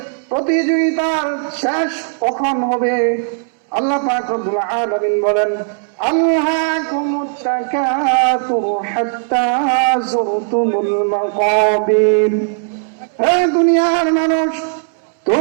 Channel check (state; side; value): silent; left; 68 dB below the other